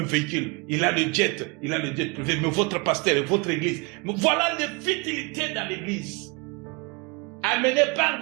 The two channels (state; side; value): quieter; left; 27.7 dB